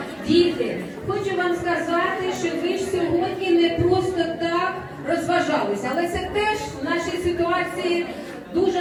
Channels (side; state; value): both; identical; correlation 1.00